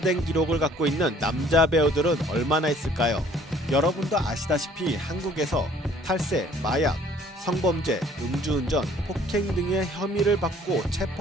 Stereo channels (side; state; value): both; normal; correlation 0.57